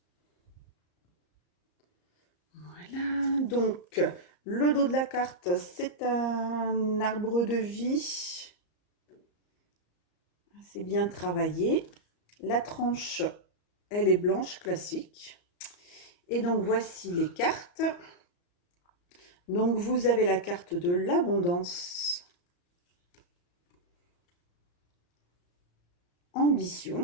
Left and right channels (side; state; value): right; late; 34 ms